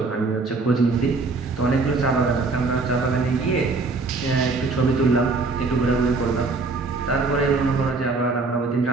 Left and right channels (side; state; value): left; quieter; 3.8 dB